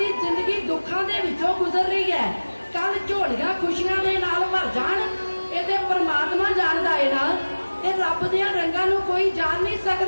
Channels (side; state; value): both; inverted; correlation -1.00